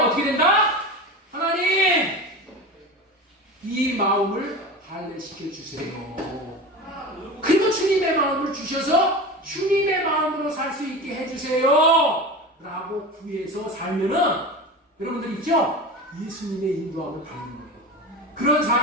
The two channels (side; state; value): both; normal; correlation 0.29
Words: 된다? 하나님, 이 마음을 할례시켜 주세요. 그리고 주님의 마음을 주셔서 주님의 마음으로 살 수 있게 해주세요 라고 구해서 살면은 여러분들 있죠? 예수님의 인도함을 받는 거예요. 그런